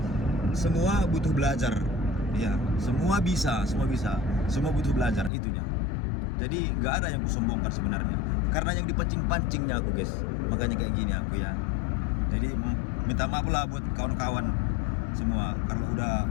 semua butuh belajar. Ya, semua bisa. Semua butuh belajar itunya. Jadi nggak ada yang kusombongkan sebenarnya. Karena yang dipancing-pancingnya aku guys. Makanya kayak gini aku ya. Jadi minta maaf lah buat kawan-kawan semua kalau udah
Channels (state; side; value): drops out; right; at 5.3 s